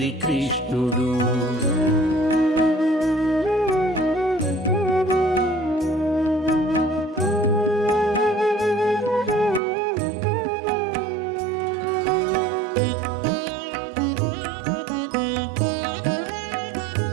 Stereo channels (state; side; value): drops out; left; at 9.6 s